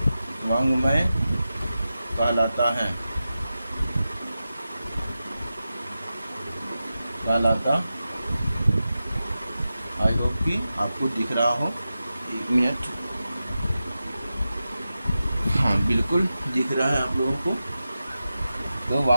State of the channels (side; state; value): both; inverted; correlation -0.92